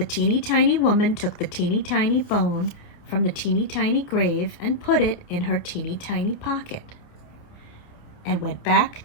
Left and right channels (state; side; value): late; right; 28 ms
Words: teeny tiny woman took the teeny tiny bone from the teeny tiny grave and put it in her teeny tiny pocket and went